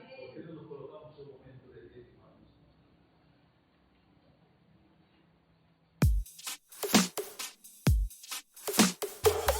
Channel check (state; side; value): identical; both; correlation 1.00